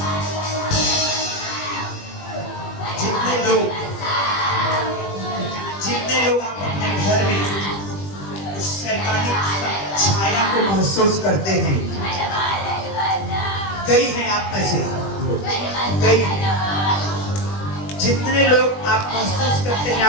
जितने लोग आप अपने घर में उस शैतानी छाया को महसूस करते हैं, कई हैं आप में से, कई जितने लोग आप महसूस करते हैं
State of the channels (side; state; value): right; late; 20 ms